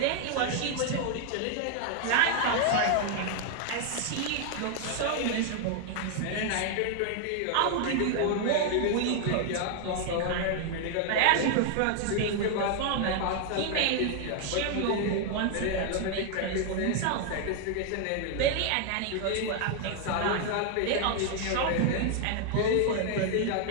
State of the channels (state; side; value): different; both; correlation 0.00